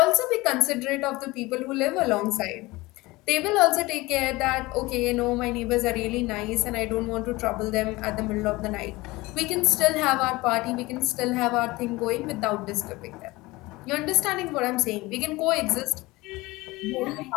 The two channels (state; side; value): quieter; right; 21.1 dB